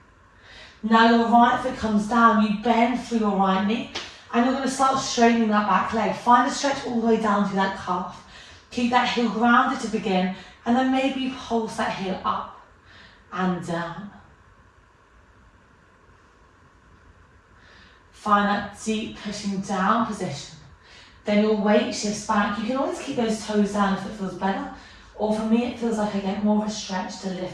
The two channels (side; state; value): both; identical; correlation 1.00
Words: Now your right foot comes down, you bend through your right knee and you're going to start straightening that back leg. Find a stretch all the way down to that calf. Keep that heel grounded to begin and then maybe you pulse that heel up and down. Find that deep pushing down position. Then your weight shifts back. You can always keep those toes down if it feels better. Or for me, it feels like I get more of a stretch to